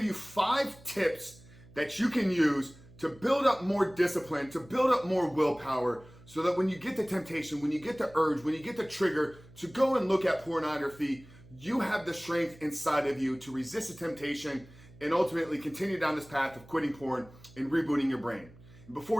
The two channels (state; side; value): noise; right; hum, 22 dB below the sound